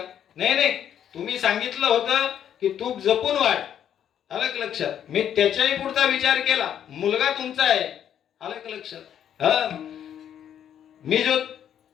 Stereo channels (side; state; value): right; quieter; 9.6 dB